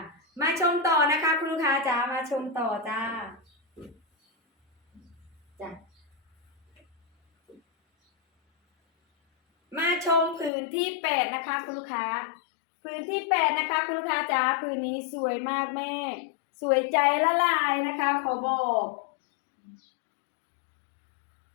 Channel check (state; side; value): drops out; right; at 10.5 s